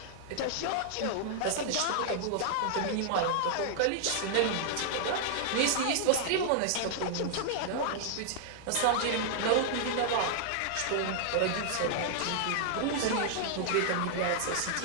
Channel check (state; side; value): different; both; correlation -0.01